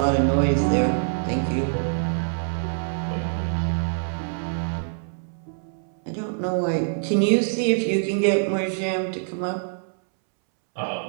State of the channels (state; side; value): silent; left; 62 dB below the other